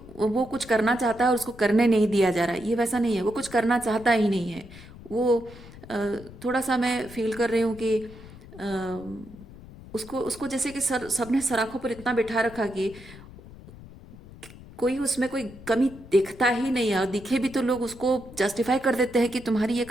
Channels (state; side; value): noise; left; rumble, 18 dB below the sound